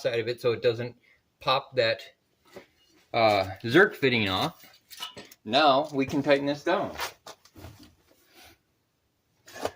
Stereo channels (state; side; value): identical; both; correlation 1.00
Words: of it so it doesn't pop that Zerk fitting off. Now we can tighten this down.